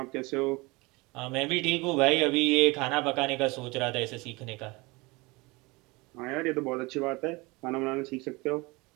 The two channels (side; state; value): left; quieter; 24.4 dB